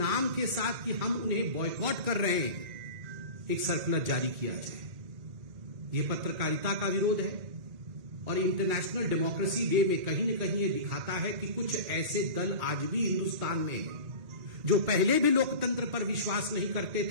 के साथ कि हम उन्हें बॉयकॉट कर रहे हैं, एक सर्कुलर जारी किया जाए। यह पत्रकारिता का विरोध है और इंटरनेशनल डेमोक्रेसी डे में कहीं न कहीं यह दिखाता है कि कुछ ऐसे दल आज भी हिंदुस्तान में हैं जो पहले भी लोकतंत्र पर विश्वास नहीं करते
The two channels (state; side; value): late; left; 2.0 ms